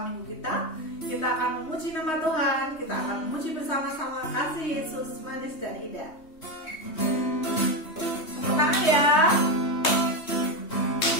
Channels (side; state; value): right; late; 3.2 ms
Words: minggu kita. Kita akan memuji nama Tuhan. Kita akan memuji bersama-sama kasih Yesus manis dan indah. Tepuk tangan ya.